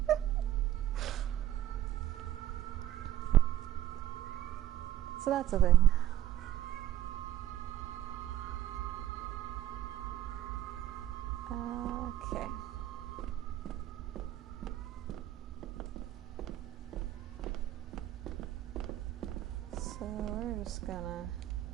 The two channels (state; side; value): quieter; left; 12.6 dB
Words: So that's a thing. Okay. So we're just gonna